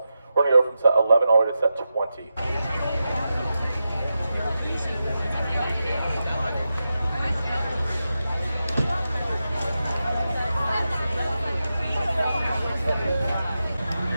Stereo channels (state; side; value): inverted; both; correlation -0.90